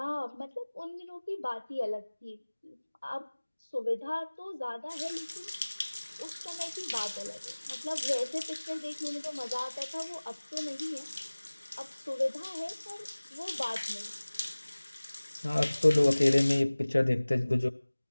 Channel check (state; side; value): inverted; both; correlation -1.00